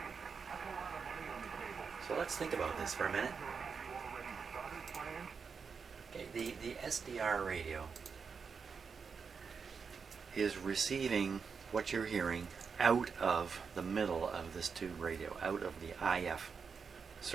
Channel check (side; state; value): left; quieter; 5.7 dB